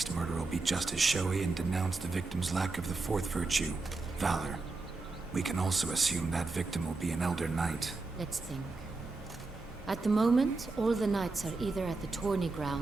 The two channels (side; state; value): left; quieter; 3.6 dB